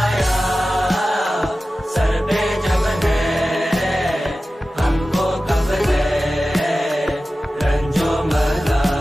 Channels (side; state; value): both; normal; correlation 0.95